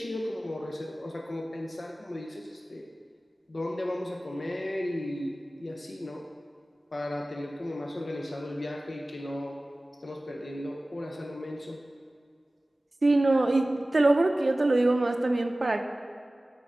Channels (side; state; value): both; normal; correlation 0.97